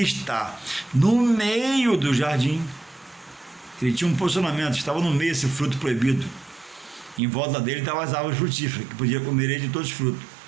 está no meio do jardim, ele tinha um posicionamento, estava no meio esse fruto proibido. Em volta dele estavam as árvores frutíferas, que podia comer ele de todos os frutos.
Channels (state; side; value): drops out; left; at 7.2 s